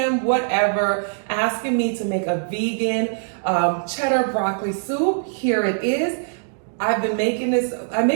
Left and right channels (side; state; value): left; silent; digital silence